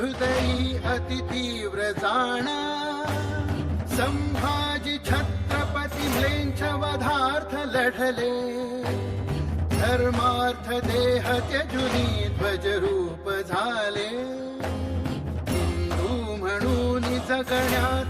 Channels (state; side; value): identical; both; correlation 1.00